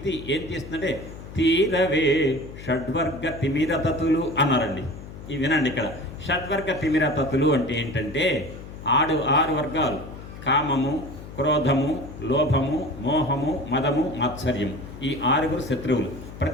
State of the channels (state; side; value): noise; left; hum, 13 dB below the sound